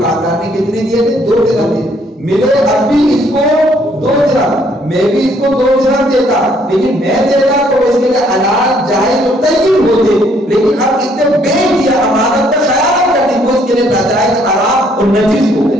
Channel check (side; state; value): both; normal; correlation 0.66